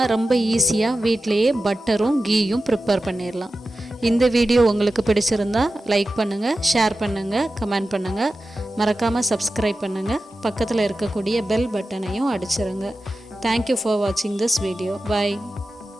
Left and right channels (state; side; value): normal; both; correlation 0.93